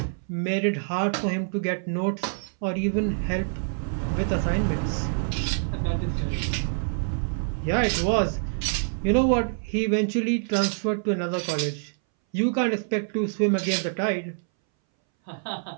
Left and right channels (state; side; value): silent; left; 61 dB below the other